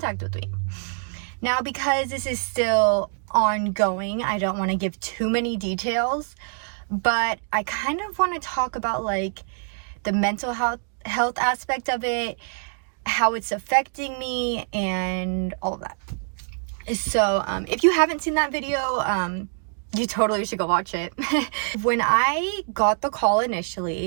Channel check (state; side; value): silent; left; 62 dB below the other